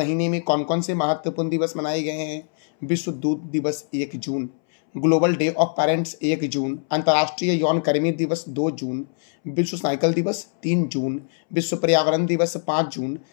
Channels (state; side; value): silent; right; 63 dB below the other